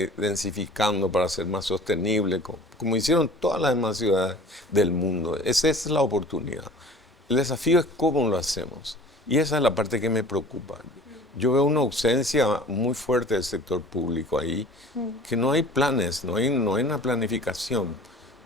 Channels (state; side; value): normal; both; correlation 0.45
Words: densificando para ser más sostenible, como hicieron todas las demás ciudades del mundo. Esa es la oportunidad. El desafío es cómo lo hacemos. Y esa es la parte que me preocupa. Yo veo una ausencia muy fuerte del sector público ahí, que no hay planes, no hay una planificación.